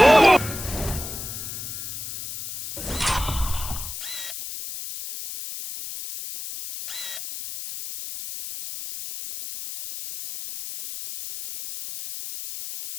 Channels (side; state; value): left; noise; hiss, 8 dB below the sound